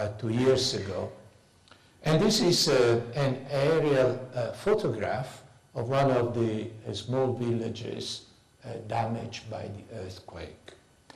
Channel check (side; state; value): both; identical; correlation 1.00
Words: 2 years ago. And this is an aerial photograph of one of the small villages damaged by the earthquake.